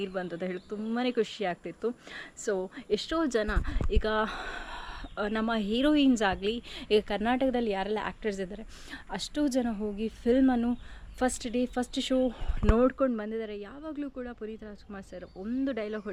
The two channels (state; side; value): identical; both; correlation 1.00